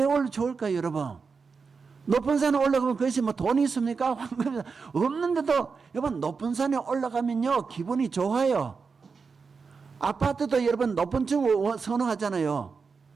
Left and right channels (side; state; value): left; quieter; 5.1 dB